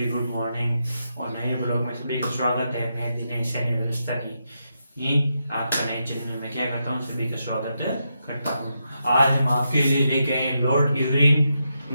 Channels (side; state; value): both; inverted; correlation -0.84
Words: गुड मॉर्निंग और नए ब्लॉग में सभी का स्वागत है। मैं दिनेश व्यवस्था की आपका नए चैनल में क्या करता हूँ, सभी का स्वागत करता हूँ। आज हम आपके लिए लेके आए लॉर्ड इरविन